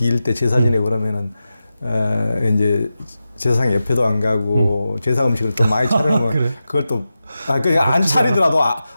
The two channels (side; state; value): both; inverted; correlation -0.92